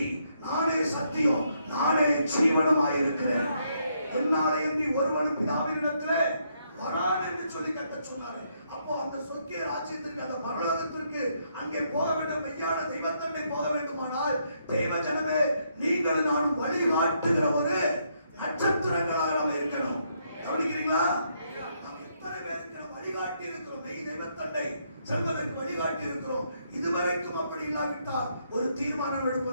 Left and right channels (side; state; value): both; inverted; correlation -0.75